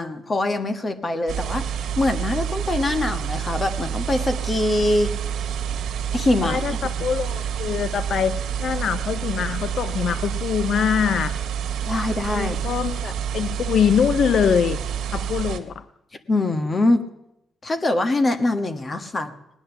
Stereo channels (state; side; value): normal; both; correlation 0.75